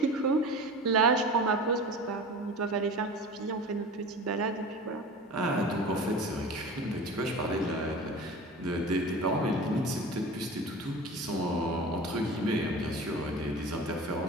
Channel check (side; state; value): both; normal; correlation 0.35